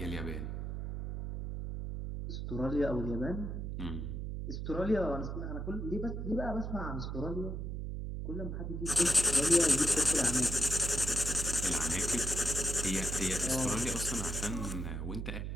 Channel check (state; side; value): noise; right; hum, 4 dB below the sound